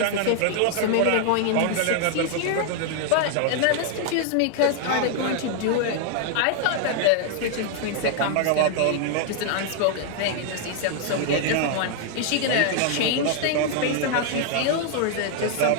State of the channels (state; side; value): different; both; correlation 0.00